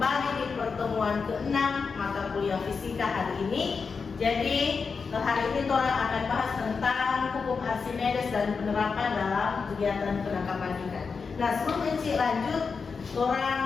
di pertemuan ke-6 mata kuliah fisika hari ini. Jadi hari ini Tora akan bahas tentang hukum Archimedes dan penerapan dalam kegiatan penangkapan ikan. Nah, sebelum Enci lanjut,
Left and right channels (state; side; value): quieter; right; 5.2 dB